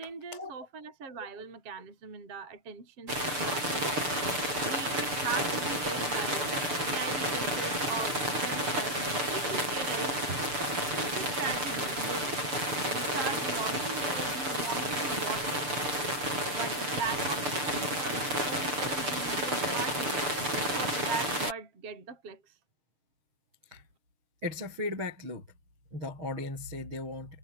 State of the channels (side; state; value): left; late; 6.8 ms